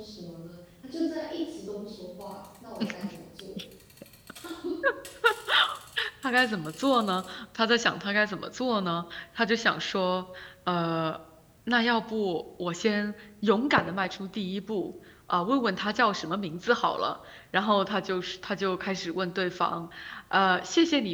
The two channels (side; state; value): both; identical; correlation 1.00